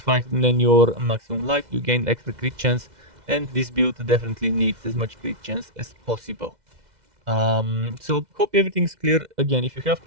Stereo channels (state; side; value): late; left; 2.0 ms